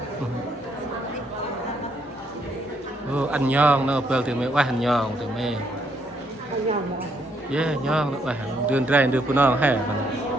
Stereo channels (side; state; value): both; normal; correlation 0.72